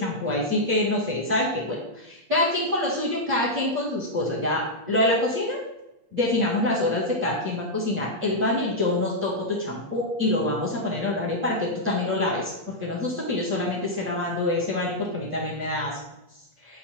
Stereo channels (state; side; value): late; left; 8.5 ms